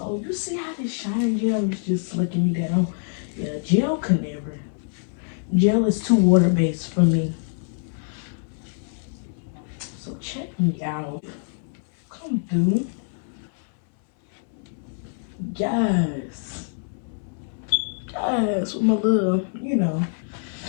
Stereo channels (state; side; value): silent; right; 60 dB below the other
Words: you see how this shining gel is just slicking me down. Yeah, gel can never. Gel is too water-based for me. So check me out. Come through. Yes. Yes, with my little, you know.